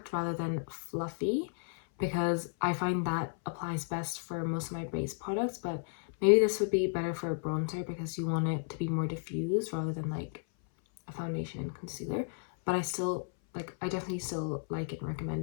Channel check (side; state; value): right; silent; 56 dB below the other